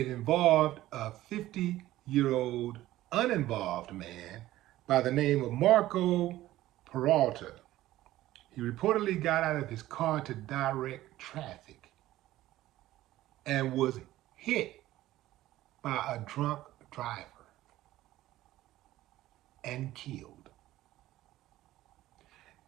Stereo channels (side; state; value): left; quieter; 15.3 dB